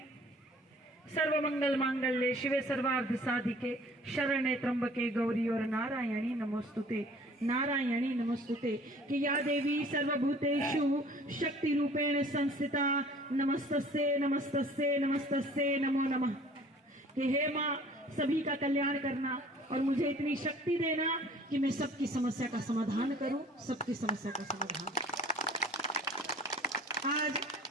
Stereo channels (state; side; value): normal; both; correlation 0.51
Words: सर्वमंगल मांगल्ये शिवे सर्वार्थ साधिके शरण्ये त्र्यंबके गौरी और नारायणी नमोस्तुते नारायणी नमोस्तुते कि या देवी सर्वभूतेषु शक्ति रूपेण संस्थिता नमस्तस्ये नमस्तस्ये नमस्तस्ये नमो नमः। कि हे माँ सभी का कल्याण करना और मुझे इतनी शक्ति देना कि मैं सबकी समस्या का समाधान करूं, सबकी समस्या का समाधान। आज